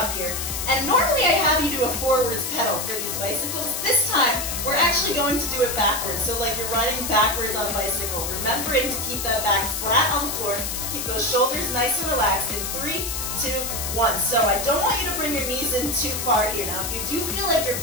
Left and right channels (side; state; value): left; noise; hiss, 4 dB below the sound